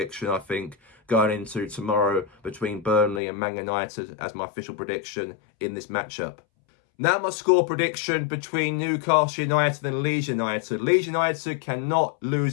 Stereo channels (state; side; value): drops out; right; at 3.2 s